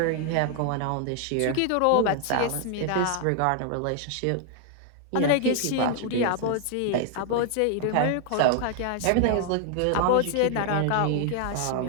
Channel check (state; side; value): different; both; correlation 0.00